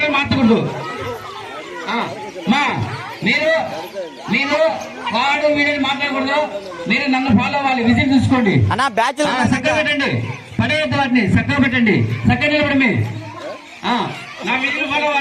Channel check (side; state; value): both; identical; correlation 1.00